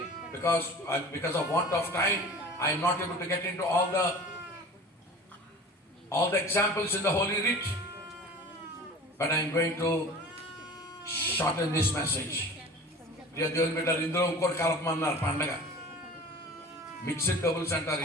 because of want of time I am not able to get into all the examples in the Holy Writ, but I am going to shorten this message. దేవుని బిడ్డలు, ఇందులో ఇంకోటి కలపమన్నారు. పండగ mixed doubles అంటారు.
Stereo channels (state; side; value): normal; both; correlation 0.40